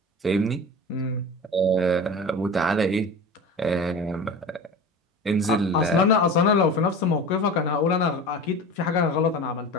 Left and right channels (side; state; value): both; normal; correlation 0.33